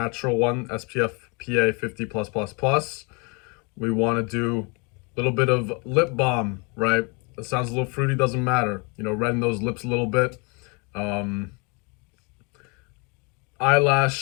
one, SPF PA 50 plus plus plus. We want to do a little bit of lip balm, right? It sounds a little fruity, doesn't matter. You know, redden those lips a little bit.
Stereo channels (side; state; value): right; quieter; 31.7 dB